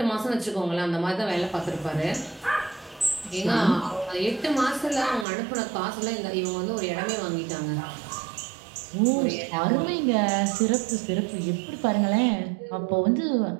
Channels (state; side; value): drops out; left; at 5.2 s